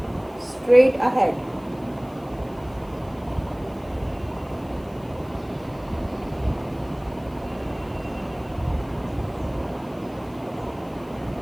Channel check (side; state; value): left; noise; hiss, 27 dB below the sound